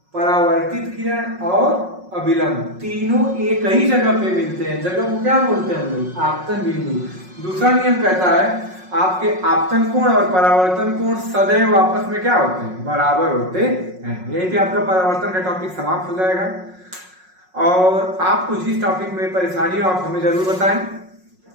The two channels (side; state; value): left; late; 5.5 ms